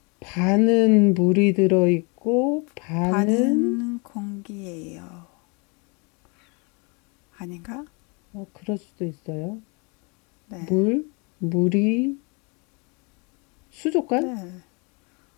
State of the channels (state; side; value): quieter; right; 31.7 dB